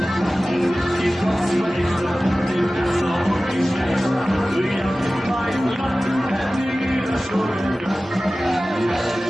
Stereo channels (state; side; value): normal; both; correlation 0.96